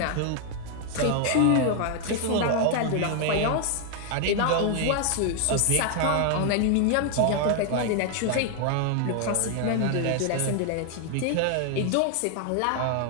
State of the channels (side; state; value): both; different; correlation 0.00